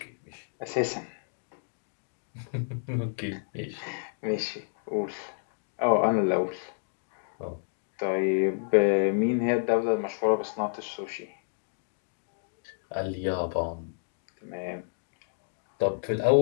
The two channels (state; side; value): silent; right; digital silence